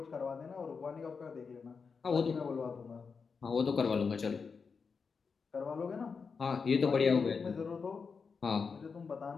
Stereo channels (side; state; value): right; quieter; 5.3 dB